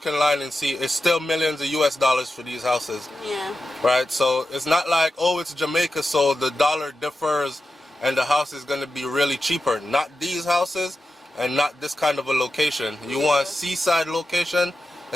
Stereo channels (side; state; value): both; normal; correlation 0.91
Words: online and see it's still millions of US dollars for these houses. Yeah. Right. So it's not like, oh, it's Jamaica, so the dollar differs and the house is going to be really cheaper. Not these houses, and not this kind of a location. You want a seaside location,